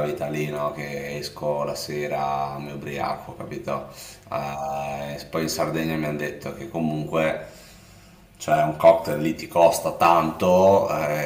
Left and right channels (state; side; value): identical; both; correlation 1.00